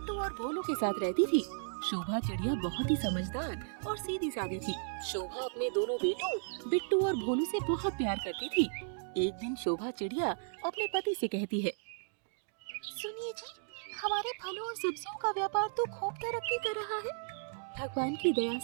और भोलू के साथ रहती थी। शोभा चिड़िया बहुत ही समझदार और सीधी सादी थी। शोभा अपने दोनों बेटों बिट्टू और भोलू से बहुत प्यार करती थी। एक दिन शोभा चिड़िया अपने पति से कहती है, सुनिए जी, हमारे फलों और सब्जियों का व्यापार तो खूब तरक्की कर रहा है। भगवान की दया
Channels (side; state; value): left; silent; digital silence